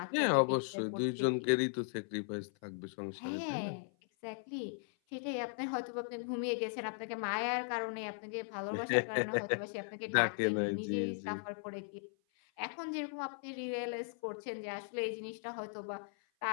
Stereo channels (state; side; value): silent; right; 53 dB below the other